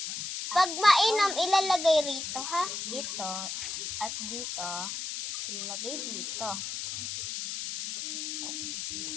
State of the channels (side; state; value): left; noise; hiss, 5 dB below the sound